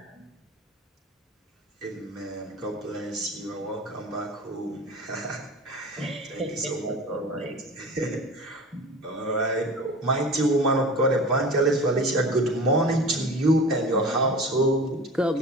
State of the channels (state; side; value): normal; both; correlation 0.36